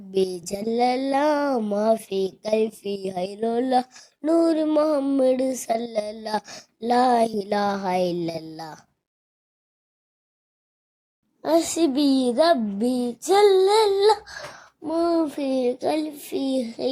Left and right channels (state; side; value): identical; both; correlation 1.00